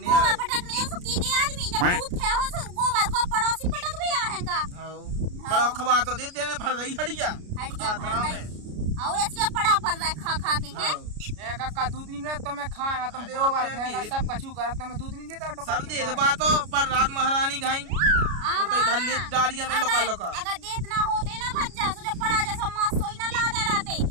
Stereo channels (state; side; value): late; left; 33 ms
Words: आ गोबर पटकने है सुकी के आदमी जब दूध खे हो सो गोबर को पड़ोसी पटक भी आ है का। हां बड़ा खबा तो दे देने भर रही हड़िया में और इसके पड़ा पर रहा खा खा के है। ए कक्का दूध नहीं मिला तो मैं खाए तुम गोबर फेंका सब कछु करत तो मैं दूध नहीं देता तो सब दे दे बात पर रात महारानी घाई तो धल्ले डारिया में लोका लोका अगर देत ना होते ना भज्जा सो जब पड़ा जैसा मां सोई ना ला दे रहते